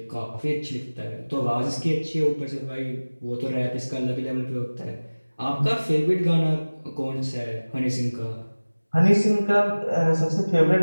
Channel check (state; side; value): inverted; both; correlation -1.00